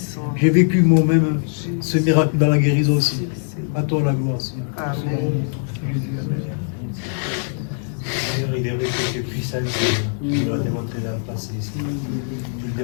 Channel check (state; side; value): silent; right; digital silence